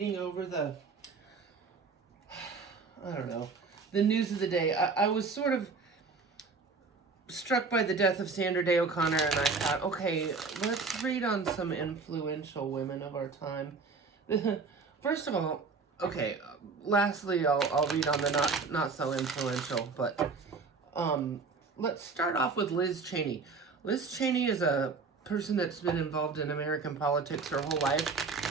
over the news of the day. I was sort of struck by the death of Sandra Day O'Connor, and I thought, okay, let's read on some influential women of our time. First of all, okay, lastly, I'll read on the not so influential, but let's start off with Liz Cheney. Liz Cheney is a person that's been involved in American politics her whole life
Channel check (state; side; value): quieter; left; 4.6 dB